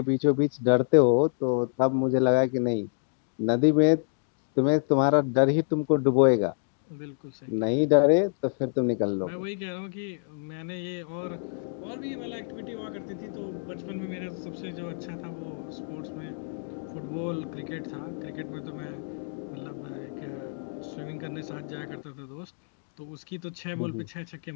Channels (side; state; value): right; silent; digital silence